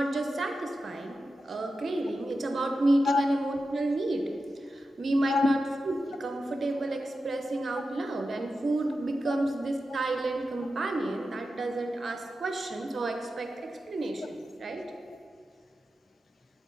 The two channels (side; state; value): both; normal; correlation 0.91